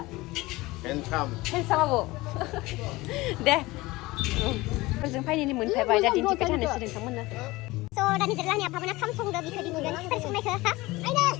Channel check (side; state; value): right; quieter; 20.5 dB